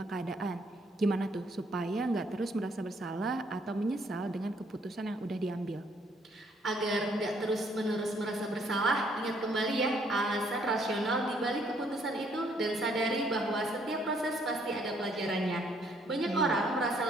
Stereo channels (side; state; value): both; normal; correlation 0.67